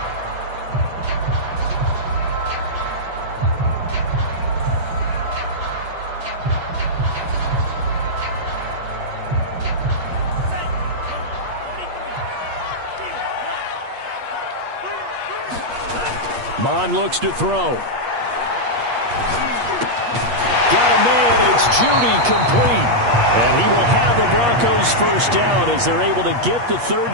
Mond looks to throw. Got a man. It's Judy complete. And he will have the Broncos 1st down as they're able to get the 3rd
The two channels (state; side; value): late; left; 8.4 ms